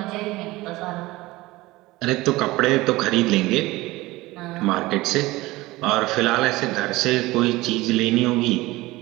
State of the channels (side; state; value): left; quieter; 19.6 dB